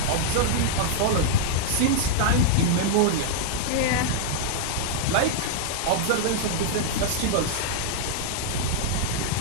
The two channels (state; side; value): different; both; correlation -0.01